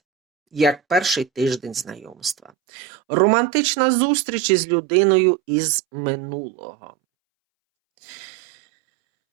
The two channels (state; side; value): drops out; left; at 2.5 s